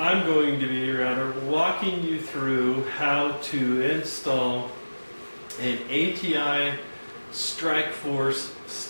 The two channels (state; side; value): inverted; both; correlation -1.00